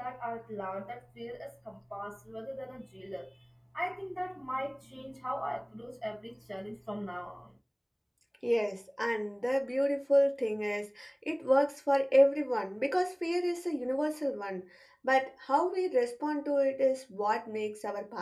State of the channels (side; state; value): both; identical; correlation 1.00